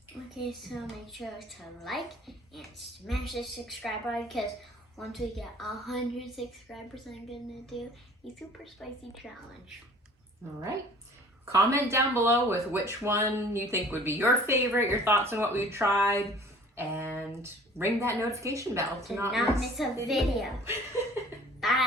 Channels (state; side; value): normal; both; correlation 0.50